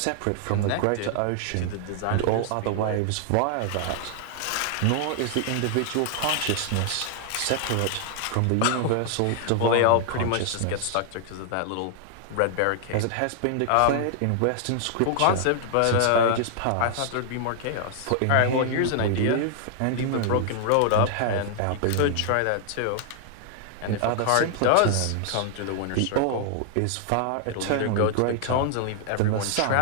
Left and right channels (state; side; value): different; both; correlation 0.00